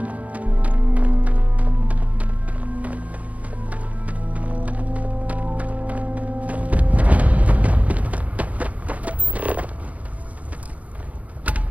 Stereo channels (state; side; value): late; left; 0.069 ms